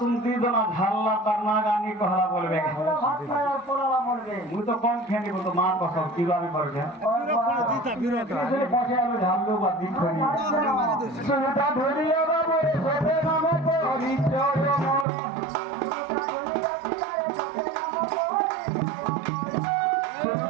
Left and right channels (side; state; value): left; drops out; at 15.1 s